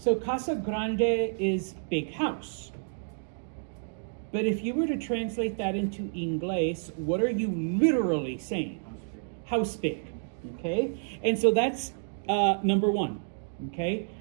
casa grande is big house. But if you were to translate that into Inglés, what are you literally saying? House big. Okay? And so that's number one. Okay?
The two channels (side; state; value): left; silent; digital silence